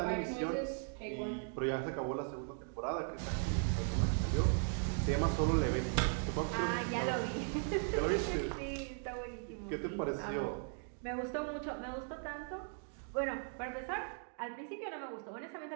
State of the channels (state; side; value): silent; left; 52 dB below the other